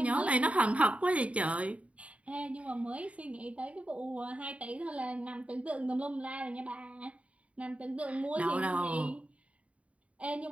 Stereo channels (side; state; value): left; late; 0.065 ms